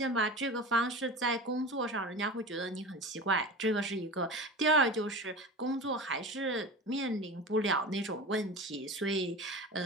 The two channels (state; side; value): normal; both; correlation 0.31